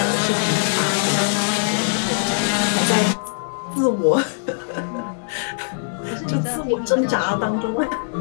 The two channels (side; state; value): right; silent; 65 dB below the other